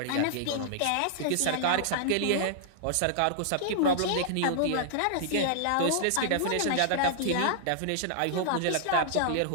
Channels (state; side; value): different; both; correlation -0.01